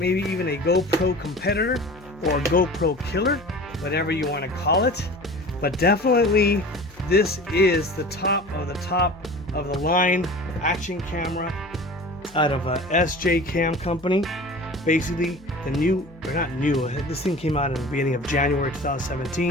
even a GoPro competitor or a GoPro killer, whatever you want to call it. But definitely this is the top of the line action camera out of SJCAM company. Basically the new, or not new, this thing came out in the beginning of January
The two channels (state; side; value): noise; left; hum, 24 dB below the sound